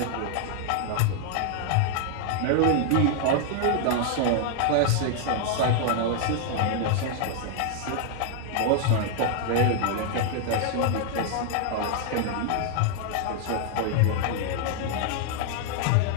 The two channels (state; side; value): different; both; correlation 0.00